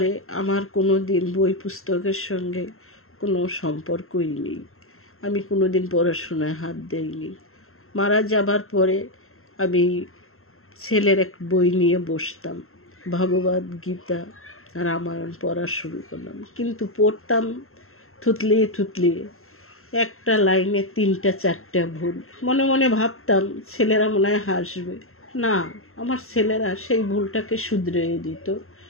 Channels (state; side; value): late; right; 0.62 ms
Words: আমার কোনো দিন বই পুস্তকের সঙ্গে কোনো সম্পর্কই নেই। আমি কোনো দিন পড়াশোনায় হাত দেইনি। মারা যাবার পরে আমি ছেলের এক বই নিয়ে বসতাম, ভগবদ গীতা রামায়ণ পড়া শুরু করলাম, কিন্তু পড়তাম থুতলিয়ে থুতলিয়ে, একটা লাইনে 3টা 4টা ভুল। মনে মনে ভাবতাম ছেলেরা মনে হয় হাসবে। না, আমার ছেলেরা সেই ভুলটাকে শুধরে দিত।